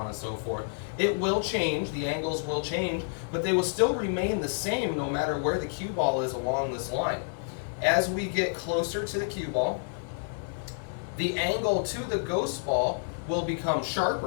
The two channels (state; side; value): silent; right; digital silence